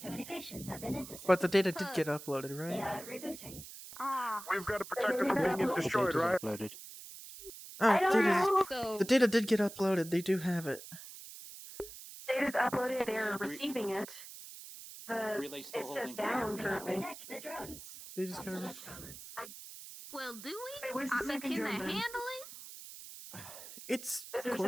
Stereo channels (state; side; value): noise; right; hiss, 14 dB below the sound